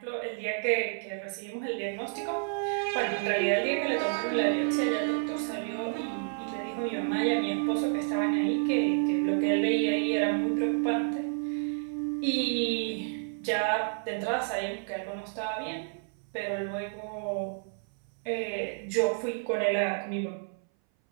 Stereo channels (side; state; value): left; silent; 58 dB below the other